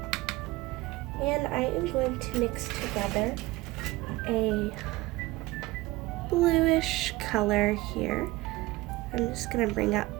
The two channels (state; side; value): quieter; left; 19.7 dB